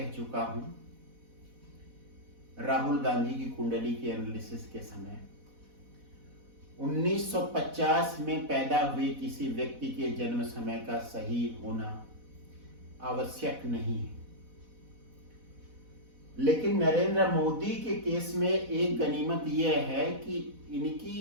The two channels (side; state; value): left; late; 4.1 ms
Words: चुका हूं, राहुल गांधी की कुंडली के एनालिसिस के समय 1950 में पैदा हुए किसी व्यक्ति के जन्म समय का सही होना आवश्यक नहीं है, लेकिन नरेंद्र मोदी के केस में एक गनीमत यह है कि इनकी